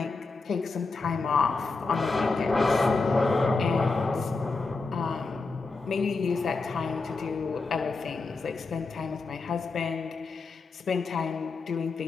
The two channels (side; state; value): right; quieter; 4.0 dB